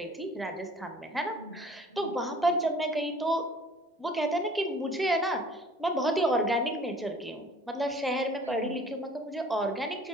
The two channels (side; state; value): both; normal; correlation 0.50